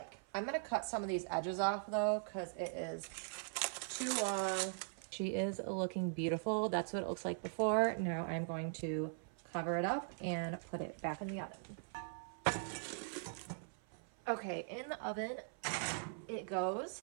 I'm going to cut some of these edges off though because it is too long. She is looking beautiful. That's what it looks like before. Now I'm going to cover it up and put it back in the oven. Okay, in the oven it goes.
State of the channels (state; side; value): silent; left; 50 dB below the other